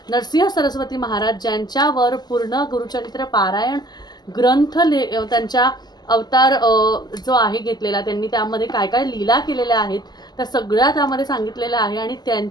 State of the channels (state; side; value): late; right; 0.20 ms